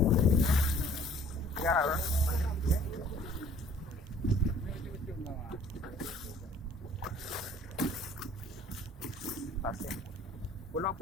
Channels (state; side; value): normal; both; correlation 0.54